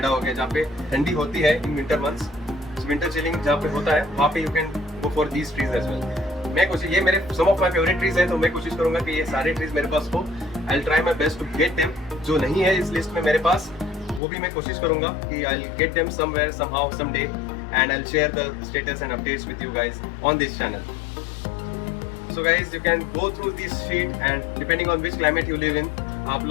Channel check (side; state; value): right; drops out; at 14.2 s